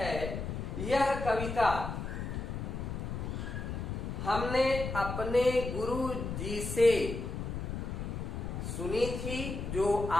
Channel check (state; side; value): noise; left; rumble, 4 dB below the sound